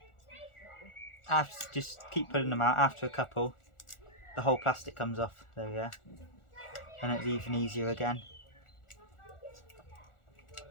Just keep pulling them out. After a couple, the whole plastic comes off. There we go. And it's even easier again.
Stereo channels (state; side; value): late; right; 1.4 ms